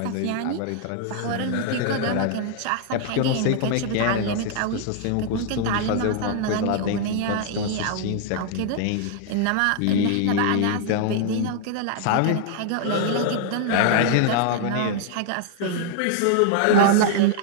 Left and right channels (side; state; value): both; different; correlation -0.01